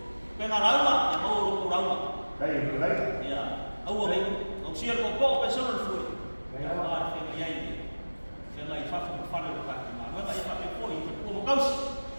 pengarama yang mau urama. Baik. Ya, awal ang siya ko personal food. Ya, ada pengyay. Pengyay fa fa ka. Mga ay pa po ito kaus.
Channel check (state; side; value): inverted; both; correlation -1.00